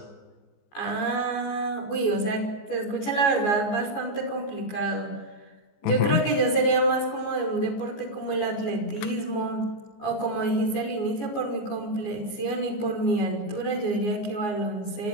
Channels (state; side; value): late; right; 14 ms